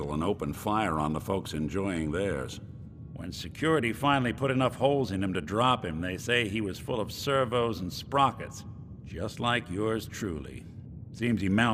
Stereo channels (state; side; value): identical; both; correlation 1.00